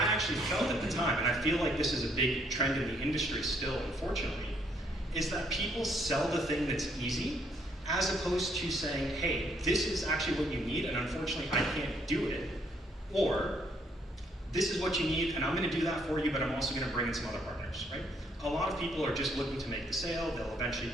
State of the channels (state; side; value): normal; both; correlation 0.69